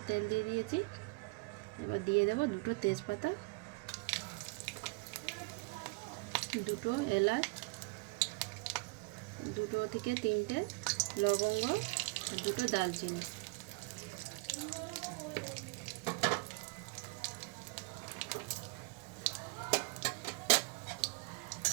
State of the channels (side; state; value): left; quieter; 28.8 dB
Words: তেল দিয়ে দিয়েছি। এবার দিয়ে দেব দুটো তেজপাতা, দুটো এলাচ, দুটো থেকে তিনটে লবঙ্গ আর দুটো দালচিনি।